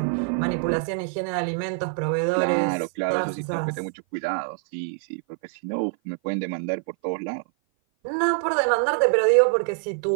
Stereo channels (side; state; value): left; silent; 56 dB below the other